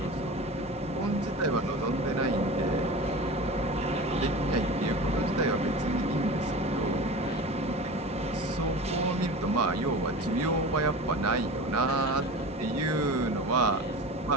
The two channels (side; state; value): both; normal; correlation 0.33